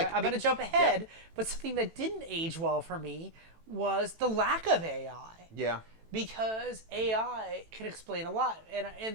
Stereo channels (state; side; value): late; left; 18 ms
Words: going to jump ahead, but something that didn't age well for me was the lack of AI. Yeah. Because AI can explain a lot.